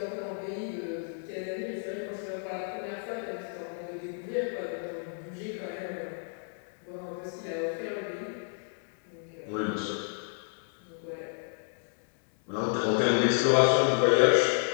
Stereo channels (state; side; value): silent; right; 57 dB below the other